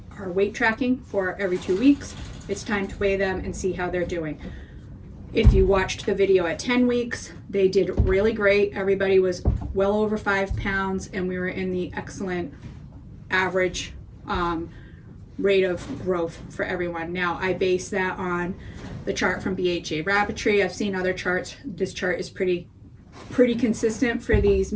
weight tracking for every 2 weeks. It's time to weigh them and see how they're doing. If you watched the video at 10 weeks, they did really great. Everybody was well over 5 pounds, and we were in the excellent average rate of growth for everyone. Now, I base that on the chart from BHA Rabbitry. I've seen other charts. This chart is pretty consistent for these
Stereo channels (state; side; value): identical; both; correlation 1.00